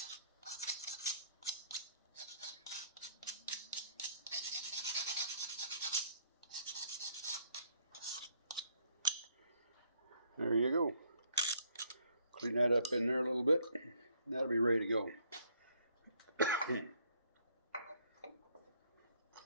There you go. Clean that up in there a little bit. That'll be ready to go. Okay,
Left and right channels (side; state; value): both; inverted; correlation -0.65